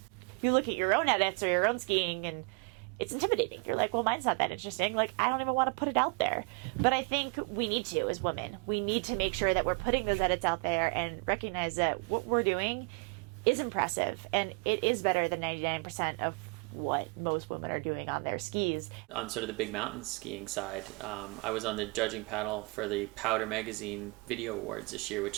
you look at your own edits or your own skiing, and it's intimidating. You're like, well, mine's not that interesting. Like, I don't even want to put it out there. But I think we need to, as women. We need to make sure that we're putting those edits out there and recognize that what we're doing is impressive, and it is better than 99% of what most women are doing on their skis. On sort of the big mountain skiing side, I was on the judging panel for the Powder Magazine Video Awards this year,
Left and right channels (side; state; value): left; quieter; 29.5 dB